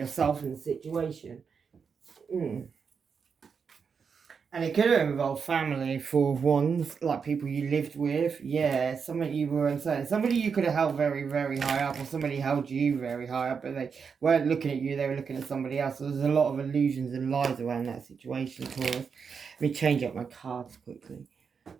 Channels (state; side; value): quieter; left; 6.0 dB